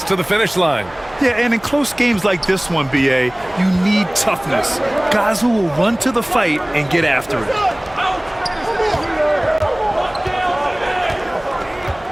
to the finish line. Yeah, and in close games like this one, BA, you need toughness. Guys who will run to the fight and get after it.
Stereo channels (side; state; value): right; noise; hum, 24 dB below the sound